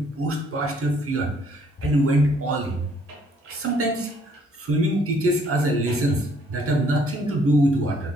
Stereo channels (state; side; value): normal; both; correlation 0.65